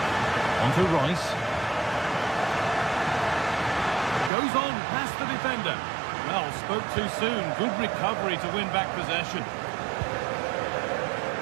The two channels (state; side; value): drops out; left; at 4.3 s